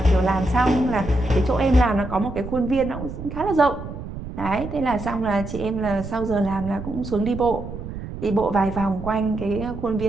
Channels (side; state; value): right; noise; rumble, 9 dB below the sound